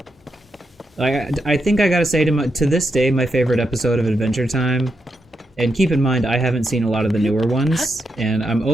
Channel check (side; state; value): both; normal; correlation 0.84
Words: I think I gotta say to this day, my favorite episode of Adventure Time, and keep in mind I haven't seen a lot of the newer ones, and I'm